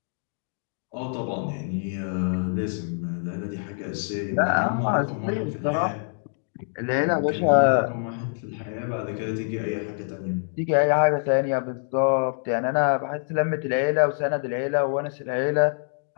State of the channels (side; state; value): right; silent; 61 dB below the other